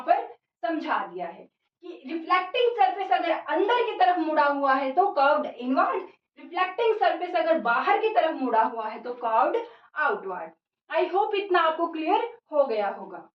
पर समझा दिया है कि रिफ्लेक्टिंग सरफेस अगर अंदर की तरफ मुड़ा हुआ है तो कर्व्ड इनवर्ड, रिफ्लेक्टिंग सरफेस अगर बाहर की तरफ मुड़ा हुआ है तो कर्व्ड आउटवर्ड। आई होप इतना आपको क्लियर हो गया होगा।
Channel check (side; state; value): both; identical; correlation 1.00